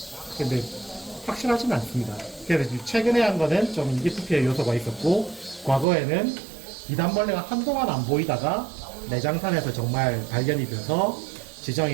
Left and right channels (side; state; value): left; drops out; at 5.9 s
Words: 근데 확실하지는 않습니다. 그래서 최근에 한 거는 좀 인기 투표의 요소가 있었고 과거에는 비단벌레가 한동안 안 보이다가 내장산에서 정말 발견이 돼서